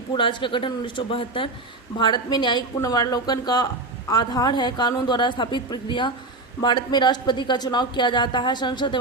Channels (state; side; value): quieter; left; 3.1 dB